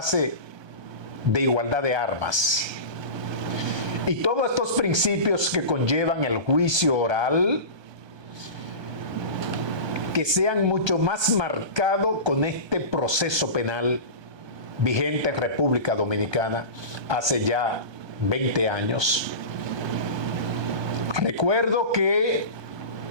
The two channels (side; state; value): left; late; 1.2 ms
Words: de igualdad de armas. Y todos estos principios que conllevan el juicio oral, que sean mucho más marcados con este proceso penal vigente en República Dominicana hace ya 20 años. Recuerdo que